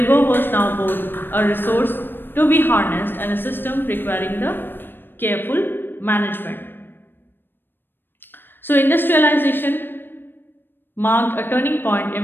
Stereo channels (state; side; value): late; right; 0.097 ms